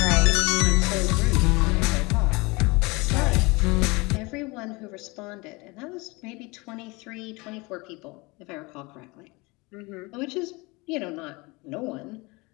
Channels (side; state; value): right; quieter; 25.4 dB